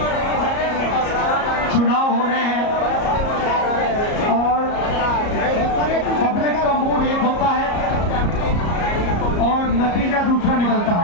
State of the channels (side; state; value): right; late; 34 ms